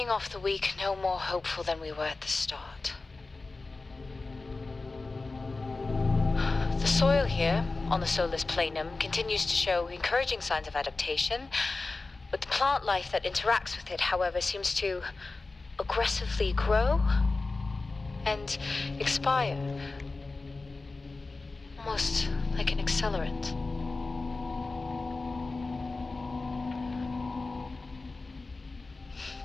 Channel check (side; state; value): right; quieter; 3.6 dB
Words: off the week no more hopeful than we were at the start. The soil here, on the Solis Planum, continues to show encouraging signs of adaptation, but the plant life that interacts with it, however, seems to aggressively grow and expire. Almost like an accelerant.